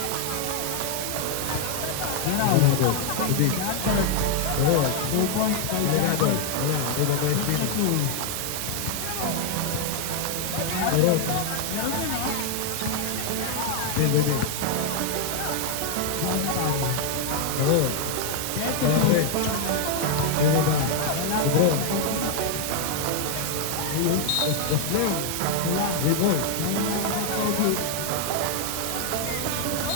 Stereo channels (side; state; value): both; different; correlation 0.00